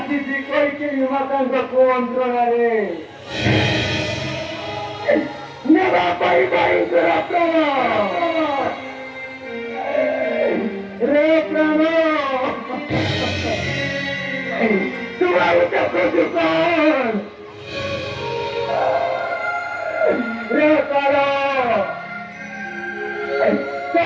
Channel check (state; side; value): identical; both; correlation 1.00